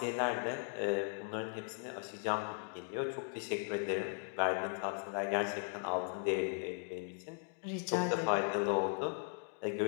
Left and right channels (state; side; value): silent; right; 53 dB below the other